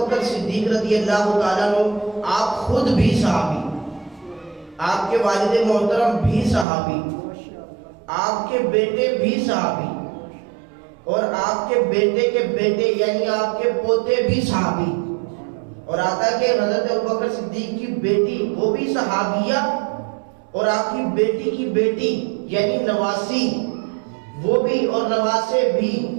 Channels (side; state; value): left; drops out; at 6.7 s